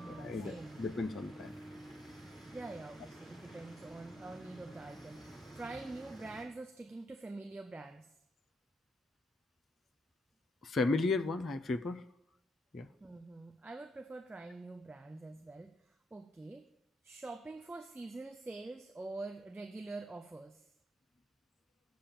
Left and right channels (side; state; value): both; normal; correlation 0.76